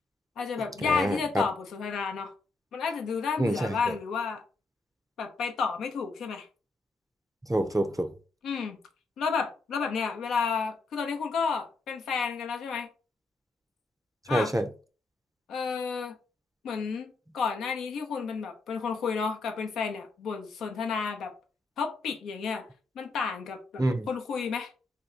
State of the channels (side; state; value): right; quieter; 3.3 dB